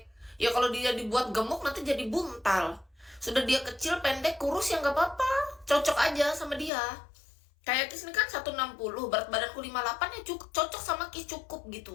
Ya kalau dia dibuat gemuk nanti jadi buntal. Sudah dia kecil, pendek, kurus ya nggak apa-apa. Cocok aja sama dia. Kayak Kis ini kan 160, berat badanku 58 ya cocok sama Kis, cukup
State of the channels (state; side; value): drops out; right; at 6.7 s